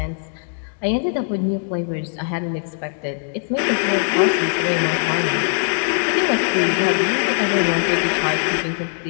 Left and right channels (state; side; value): silent; right; 65 dB below the other